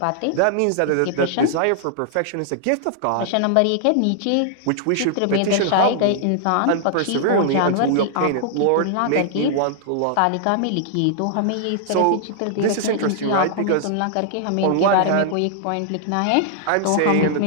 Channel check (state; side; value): different; both; correlation -0.01